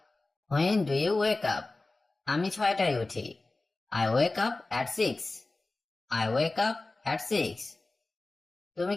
When do you wake up? আমি 6টায় উঠি। I wake up at 6। I wake up at 6। তুমি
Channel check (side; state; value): right; quieter; 3.2 dB